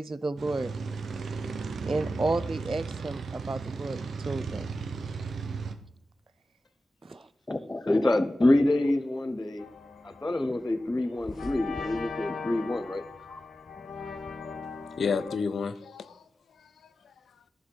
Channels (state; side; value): normal; both; correlation 0.92